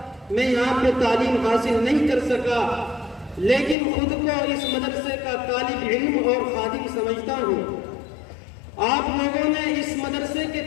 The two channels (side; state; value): right; drops out; at 3.8 s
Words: میں یہاں پہ تعلیم حاصل نہیں کر سکا، لیکن خود کو اس مدرسے کا طالب علم اور خادم سمجھتا ہوں۔ آپ لوگوں نے اس مدرسے کے